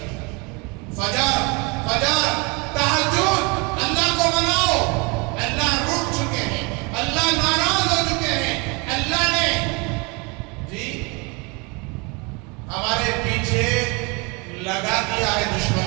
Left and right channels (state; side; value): quieter; left; 29.3 dB